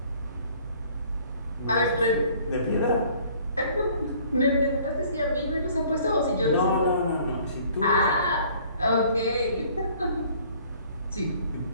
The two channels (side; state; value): both; inverted; correlation -0.56